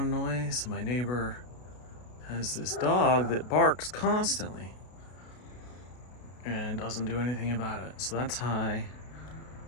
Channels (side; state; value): right; late; 33 ms